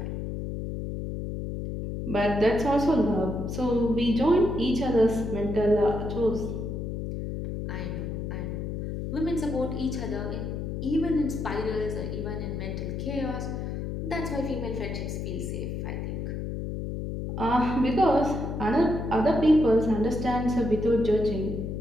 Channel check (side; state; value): left; noise; hum, 4 dB below the sound